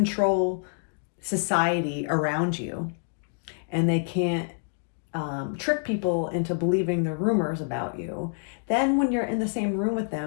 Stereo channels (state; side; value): silent; right; digital silence